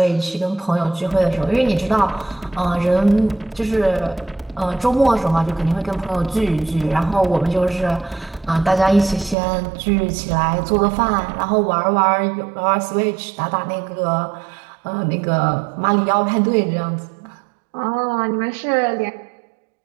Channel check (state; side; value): drops out; left; at 9.3 s